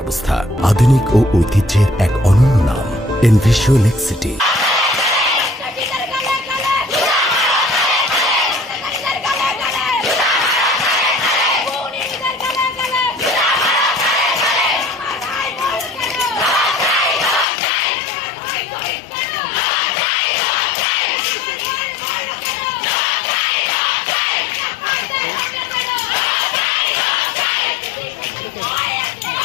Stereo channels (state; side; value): drops out; right; at 17.4 s